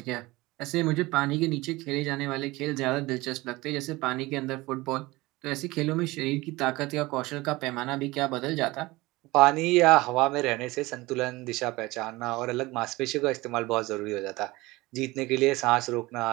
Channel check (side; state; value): left; quieter; 20.9 dB